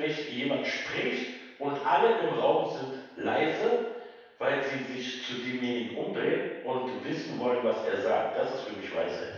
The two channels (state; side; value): identical; both; correlation 1.00